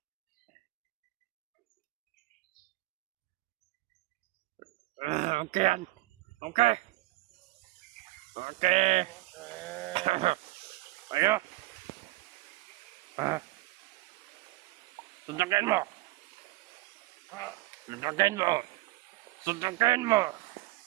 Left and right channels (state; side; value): quieter; left; 19.7 dB